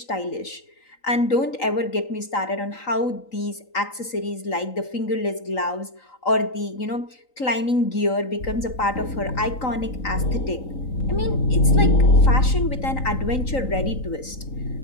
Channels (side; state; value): right; late; 3.9 ms